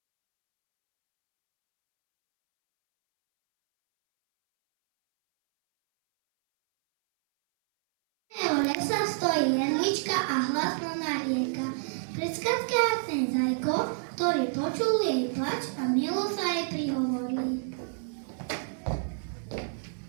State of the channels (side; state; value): left; silent; 59 dB below the other